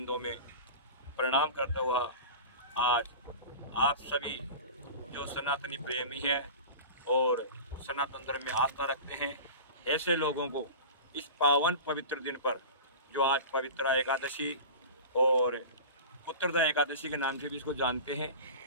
में प्रणाम करता हुआ आज आप सभी जो सनातनी प्रेमी हैं और सनातन धर्म में आस्था रखते हैं, ऐसे लोगों को इस पावन पवित्र दिन पर, जो आज पवित्रा एकादशी और पुत्रदा एकादशी के नाम से भी इसको जानते हैं,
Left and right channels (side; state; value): both; inverted; correlation -0.33